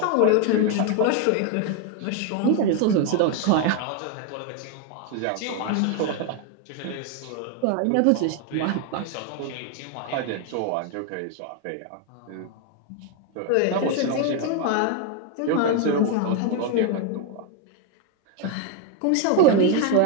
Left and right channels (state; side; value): different; both; correlation 0.01